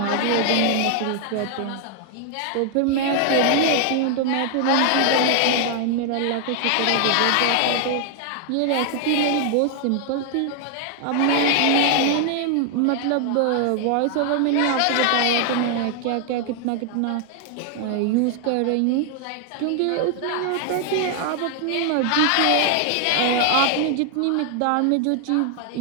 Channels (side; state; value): both; different; correlation 0.00